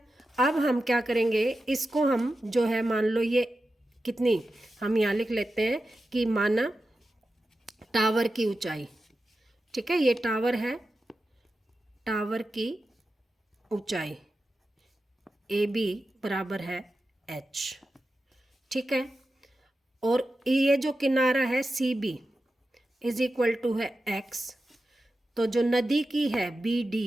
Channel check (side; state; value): both; normal; correlation 0.92